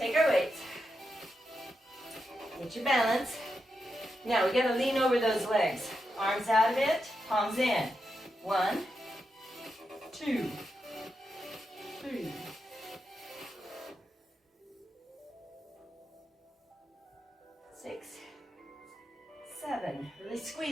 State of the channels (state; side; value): normal; both; correlation 0.86